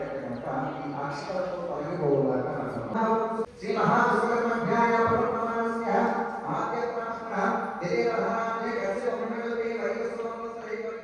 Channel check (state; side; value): identical; both; correlation 1.00